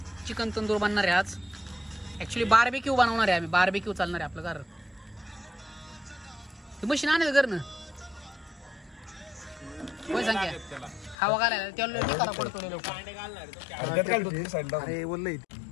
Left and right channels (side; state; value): right; drops out; at 11.2 s